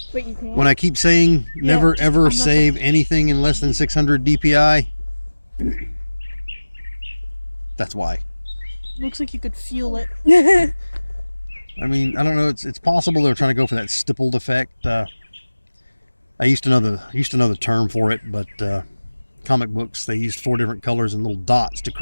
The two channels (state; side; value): inverted; both; correlation -1.00